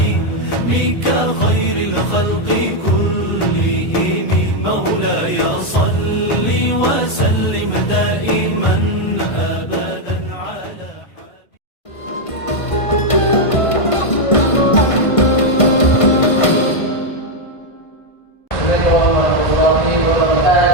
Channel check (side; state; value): right; late; 1.5 ms